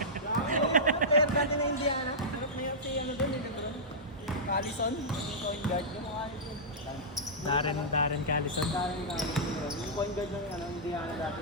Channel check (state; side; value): normal; both; correlation -0.13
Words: Player natin na Indiana. Ano player si ano doon? Callison? Yung point guard. Yung mga ano doon. Darren Callison. Darren Callison. Yung point guard ng ano, Indiana dati